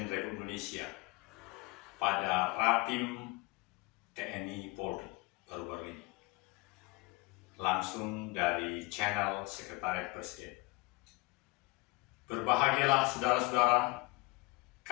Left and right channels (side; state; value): right; quieter; 24.5 dB